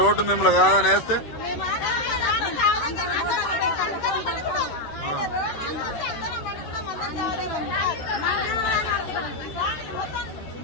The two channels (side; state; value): right; late; 13 ms